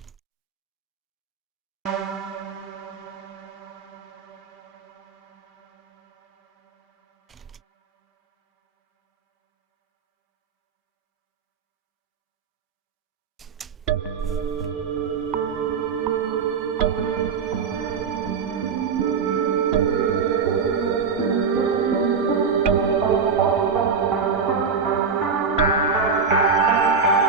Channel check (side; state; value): left; quieter; 5.5 dB